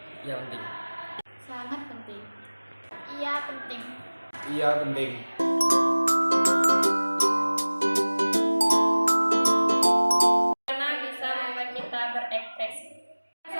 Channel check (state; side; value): inverted; both; correlation -1.00